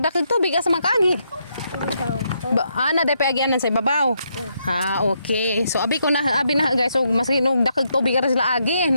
dakag tubig asa man ka agi. Na day pa agianan sa ibabaw. Ha, okay. So abi na guys, so mas hinog dakag tubig ra sila agi.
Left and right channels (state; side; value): inverted; both; correlation -0.78